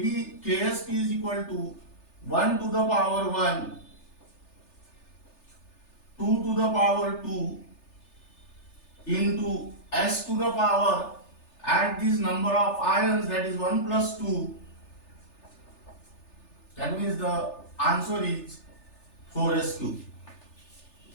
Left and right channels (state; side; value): late; right; 3.3 ms